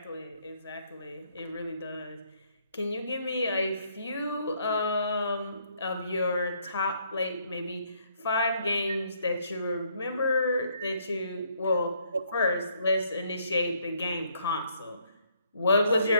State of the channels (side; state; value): both; inverted; correlation -0.69